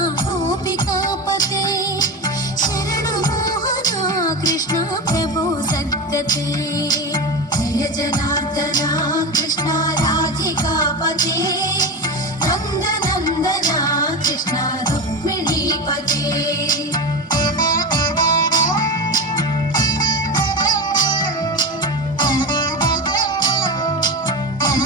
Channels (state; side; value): normal; both; correlation 0.22